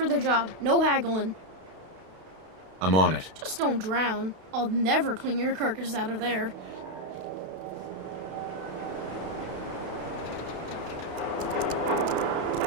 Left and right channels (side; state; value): left; late; 32 ms